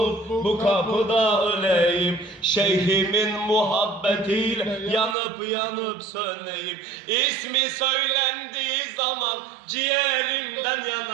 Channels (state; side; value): drops out; left; at 5.2 s